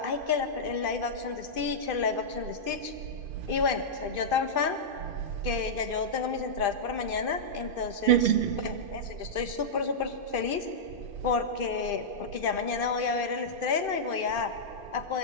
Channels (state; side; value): late; left; 2.5 ms